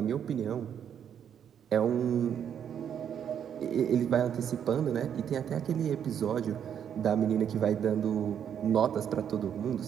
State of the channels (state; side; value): quieter; left; 8.7 dB